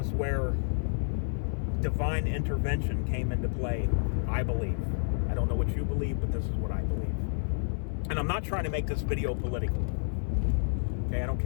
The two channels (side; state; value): right; silent; 58 dB below the other